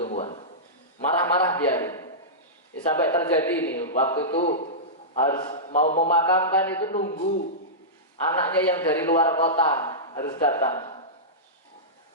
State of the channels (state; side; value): normal; both; correlation -0.15